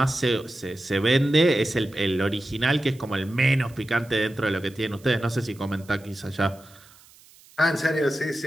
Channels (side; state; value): right; noise; hiss, 26 dB below the sound